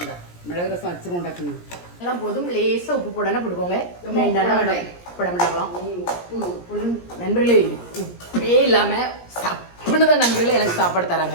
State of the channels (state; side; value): late; right; 17 ms